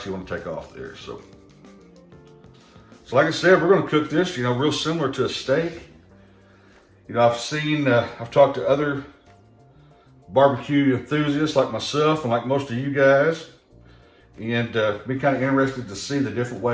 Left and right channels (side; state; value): both; identical; correlation 1.00